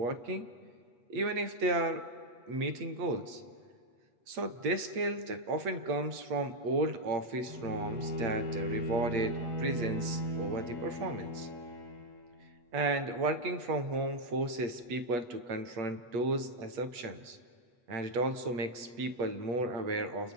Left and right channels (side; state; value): left; late; 8.7 ms